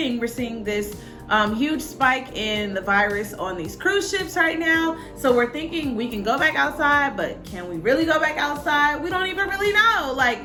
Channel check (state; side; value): identical; both; correlation 1.00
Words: We're seeing this huge spike in the virus on these cruise ships right now. So we're thinking we can go back outside, but can we really go back outside? We don't even really know.